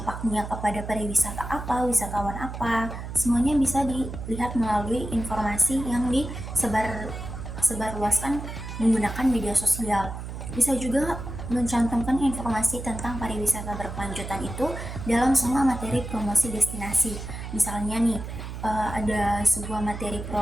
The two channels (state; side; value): noise; right; hum, 8 dB below the sound